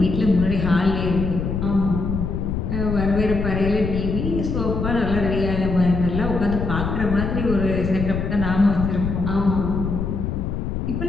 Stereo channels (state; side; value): noise; left; rumble, 2 dB below the sound